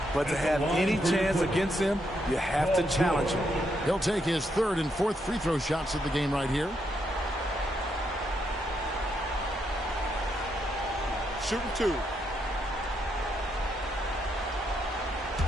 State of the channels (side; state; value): both; normal; correlation 0.79